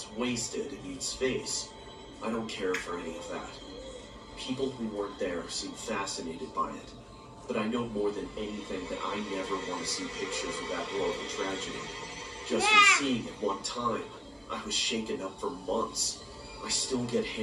Wasted and Eats Face. I don't care for any of that. People who weren't there seem fascinated by it, but I know more than anything that I never want to see pictures of that horrible tragedy. Just from seeing it one time, I was shaken up for months. I still get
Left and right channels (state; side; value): identical; both; correlation 1.00